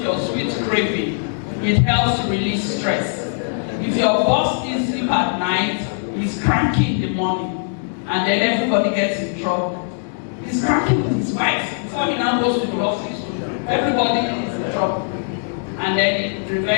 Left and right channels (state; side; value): silent; right; digital silence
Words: your sweet craving. It helps to release stress. If your boss is sleep at night, he's cranky in the morning, and then everybody gets in trouble. He's cranky with his wife before he now goes to the office. Everybody is in trouble. And then it